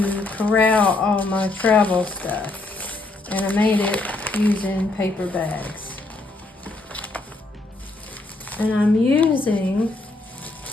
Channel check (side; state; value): right; quieter; 3.1 dB